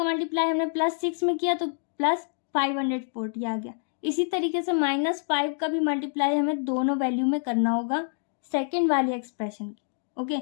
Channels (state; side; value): silent; right; 60 dB below the other